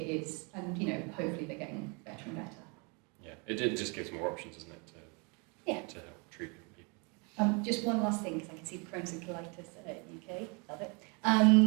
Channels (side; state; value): left; quieter; 32.5 dB